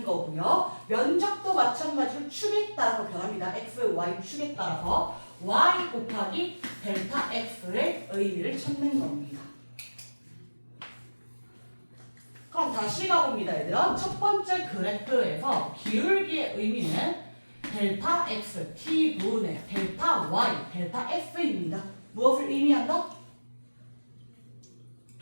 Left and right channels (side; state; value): both; inverted; correlation -1.00